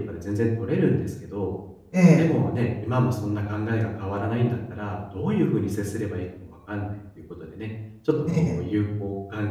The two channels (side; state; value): both; identical; correlation 1.00